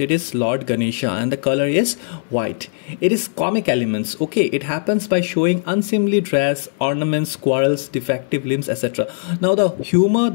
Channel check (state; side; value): silent; right; digital silence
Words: it is Lord Ganesha, and the color is white. It is comic elements. Okay, it happens by showing unseemly dress, ornaments, quarrels, defective limbs, etc. Now the humor